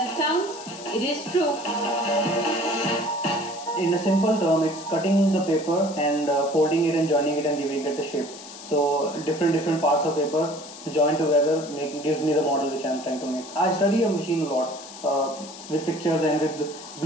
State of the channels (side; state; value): left; noise; hiss, 15 dB below the sound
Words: it sounds, it is true. In a simple term, it's cutting the paper and folding it and joining it and giving it a shape. So different parts of paper joined together gives me the model which I'm trying to make. I study a machine a lot with pictures and with